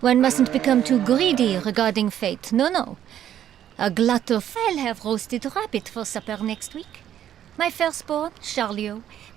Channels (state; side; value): quieter; left; 10.8 dB